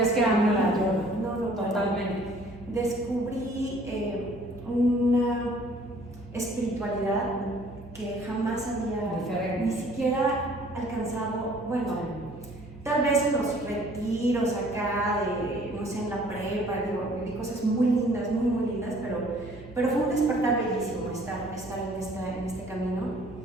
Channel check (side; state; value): both; normal; correlation 0.55